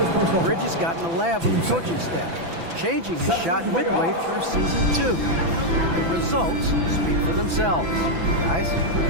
Bridges got in the lab with the coaching staff, changing his shot midway through season 2. The results speak for themselves. Guys?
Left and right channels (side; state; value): left; late; 6.0 ms